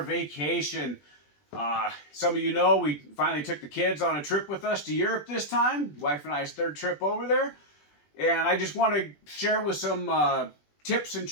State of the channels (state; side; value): late; right; 20 ms